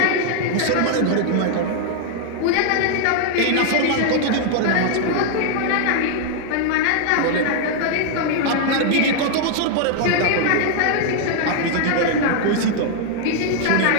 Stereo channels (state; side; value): different; both; correlation 0.00